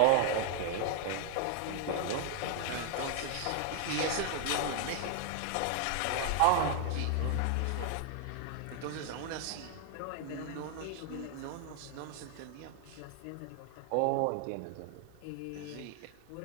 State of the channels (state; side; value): different; both; correlation 0.00